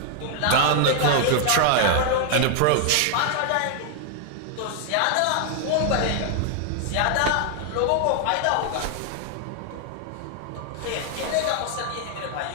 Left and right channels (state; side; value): different; both; correlation 0.00